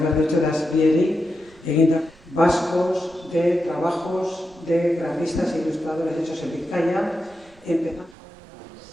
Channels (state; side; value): noise; right; rumble, 27 dB below the sound